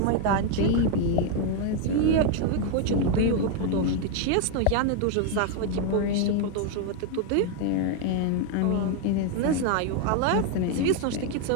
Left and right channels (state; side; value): different; both; correlation 0.01